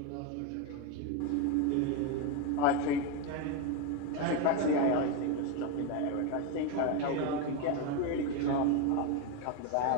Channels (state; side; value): different; both; correlation 0.03